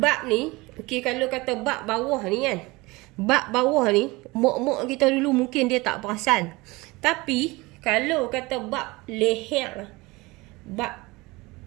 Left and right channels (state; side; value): quieter; left; 22.8 dB